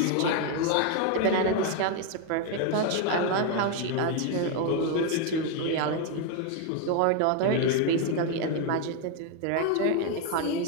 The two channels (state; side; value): different; both; correlation 0.01